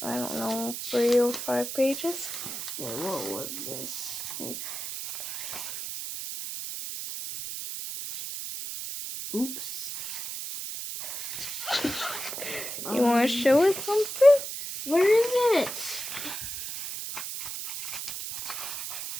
I don't know, 3 or 5 pages? Wait, what was this? Oops. You want to show us something? Where is it?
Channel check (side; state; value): right; noise; hiss, 6 dB below the sound